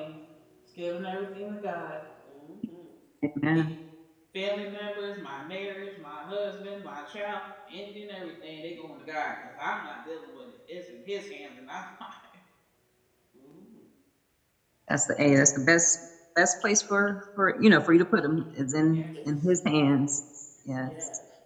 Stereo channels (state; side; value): identical; both; correlation 1.00